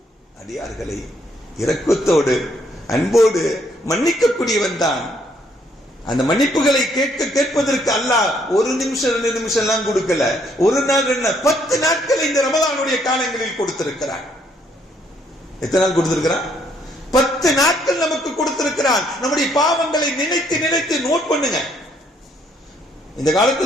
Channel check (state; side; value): normal; both; correlation 0.69